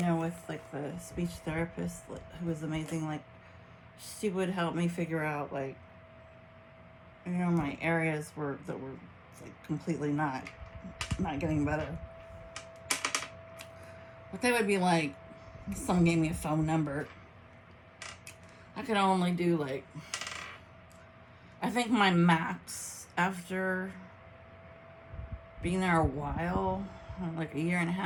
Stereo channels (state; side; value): identical; both; correlation 1.00